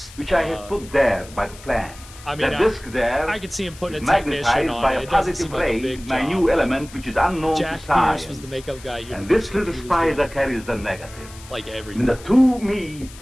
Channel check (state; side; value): noise; left; hiss, 19 dB below the sound